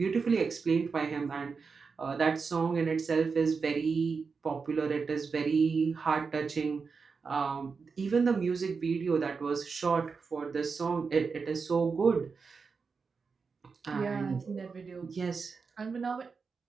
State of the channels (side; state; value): left; quieter; 5.1 dB